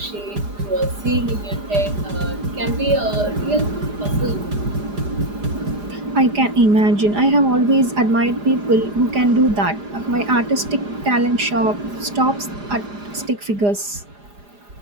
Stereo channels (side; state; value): left; late; 4.9 ms